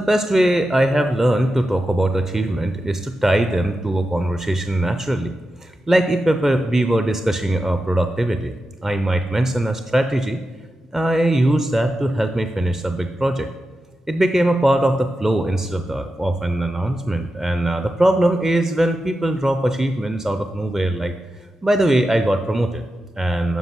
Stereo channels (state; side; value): normal; both; correlation 0.90